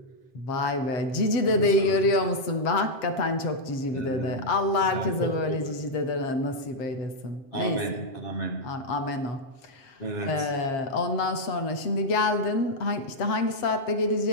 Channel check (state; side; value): late; right; 7.5 ms